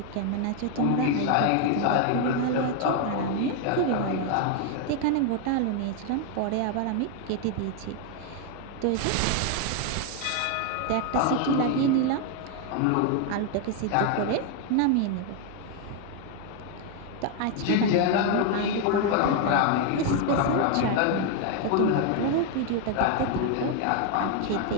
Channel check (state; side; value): different; both; correlation 0.01